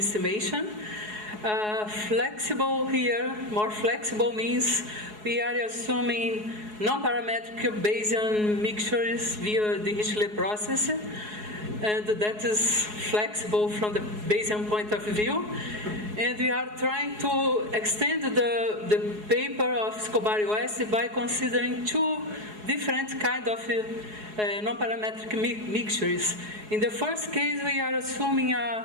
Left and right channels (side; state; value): left; late; 4.7 ms